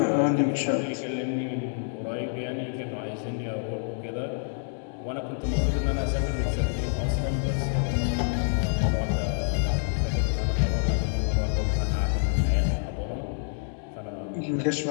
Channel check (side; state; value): right; silent; 60 dB below the other